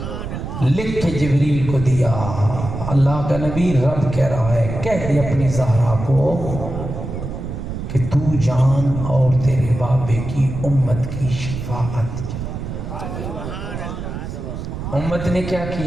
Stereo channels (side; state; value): right; noise; rumble, 7 dB below the sound